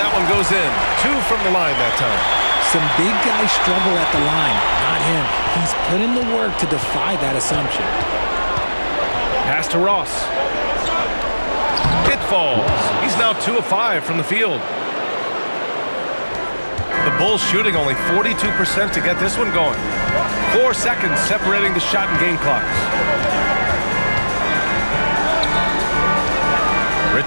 one goes in. 2 from the line that time. Some big guys struggle at the line, not him. He's put in the work to defy that assumption. Pass to Ross. It falls. He's now 2 of 5 from the field. The Bulls shooting only 42% to get this one going. 4 seconds separating the shot and game clocks.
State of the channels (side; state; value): both; inverted; correlation -1.00